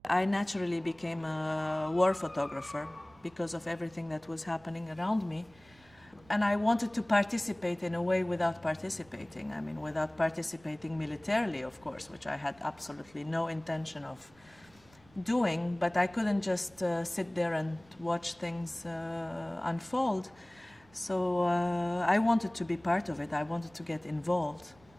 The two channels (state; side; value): noise; right; rumble, 28 dB below the sound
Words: I naturally became a war photographer because of everything that was happening around me. And I wanted to participate in a way without participating. I mean, without participating militarily, of course, which I had absolutely no intention of doing, but I couldn't just sit there and watch things unfold. So I wanted to be part of it. I wanted to get involved.